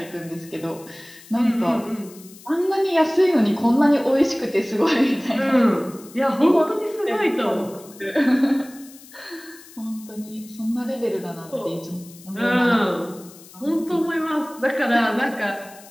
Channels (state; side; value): noise; left; hiss, 21 dB below the sound